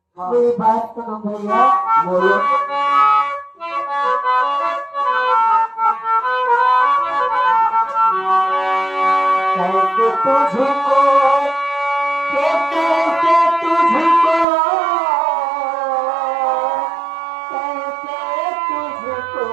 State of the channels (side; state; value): left; drops out; at 14.5 s